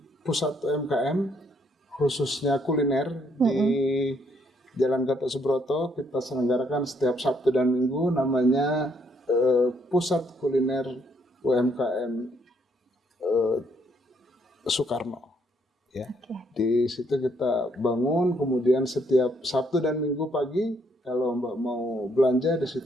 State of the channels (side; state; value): both; normal; correlation 0.70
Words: pusat UMKM khususnya kuliner di Jalan Gatot Subroto. Kita selenggarakan setiap Sabtu dan Minggu, namanya Pusat Kuliner UMKM Soekarno. Ya. Di situ kita bangun, kemudian setiap Sabtu dan Minggu pagi, kalau Mbak mau belanja di